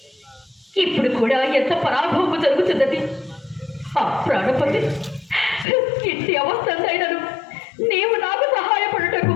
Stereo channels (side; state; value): right; drops out; at 5.7 s